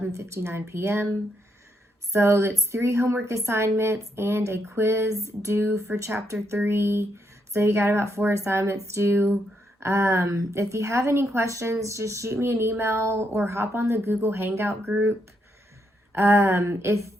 p.m. So it's 3 homework assignments and a quiz due for chapter 3. So you got about 4 assignments due. If you have any questions, just shoot me an email or hop on the Google Hangout group. If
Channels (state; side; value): normal; both; correlation 0.78